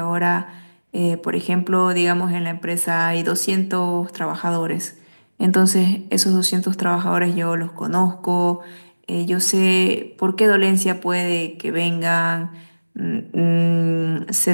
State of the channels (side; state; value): both; inverted; correlation -1.00